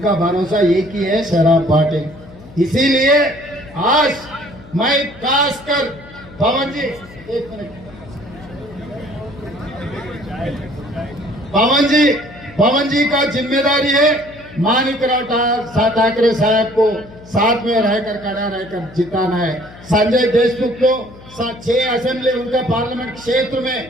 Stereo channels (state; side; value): noise; left; hum, 20 dB below the sound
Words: भरोसा एक ही है, शराब बाटिल। इसीलिए आज मैं खासकर पवन जी, एक मिनट, पवन जी का जिम्मेदारी है माणिकराव ठाकरे साहब को साथ में रहकर खड़ा रहकर जिताना है। संजय देशमुख को 6 असेंबली उनका पार्लियामेंट क्षेत्र में